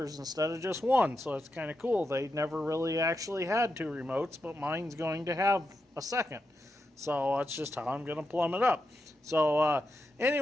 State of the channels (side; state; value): both; normal; correlation 0.87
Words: instead of just 1. So it's kind of cool. They never really actually had 2 remotes, but mine's going to have a second. So that's just how I'm going to plumb it up. So